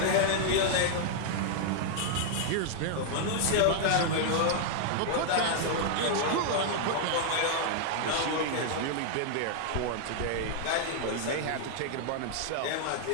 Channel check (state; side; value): different; both; correlation -0.01